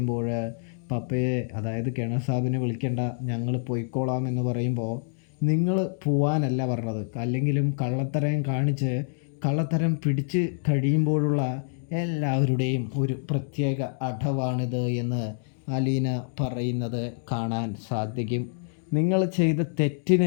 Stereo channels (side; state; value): right; silent; digital silence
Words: പപ്പയെ, അതായത് കിണർ സാബിനെ വിളിക്കേണ്ട, ഞങ്ങൾ പോയിക്കോളാം എന്ന് പറയുമ്പോൾ നിങ്ങൾ പോവാനല്ല പറഞ്ഞത്, അല്ലെങ്കിലും കള്ളത്തരം കാണിച്ച് കള്ളത്തരം പിടിച്ച് കഴിയുമ്പോഴുള്ള എല്ലാവരുടെയും ഒരു പ്രത്യേക അടവാണിത് എന്ന് അലീന പറയുന്നത് കാണാൻ സാധിക്കും. നിങ്ങൾ ചെയ്ത